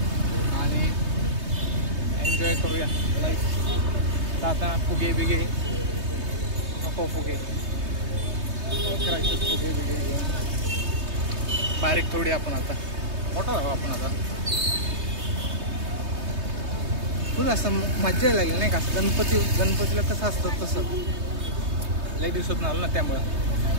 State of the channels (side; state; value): left; late; 3.2 ms